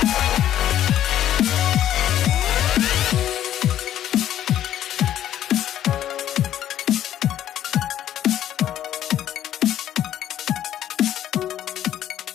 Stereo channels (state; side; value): quieter; right; 11.6 dB